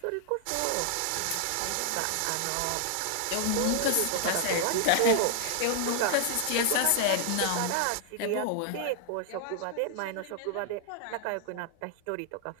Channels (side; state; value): both; different; correlation 0.00